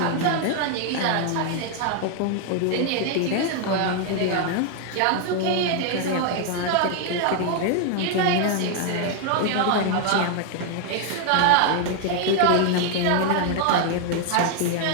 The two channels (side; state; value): both; different; correlation 0.00